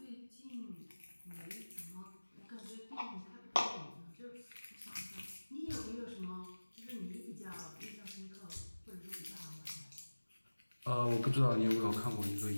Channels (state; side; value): inverted; both; correlation -1.00